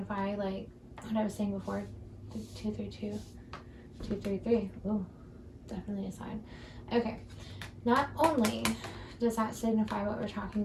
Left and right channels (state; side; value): identical; both; correlation 1.00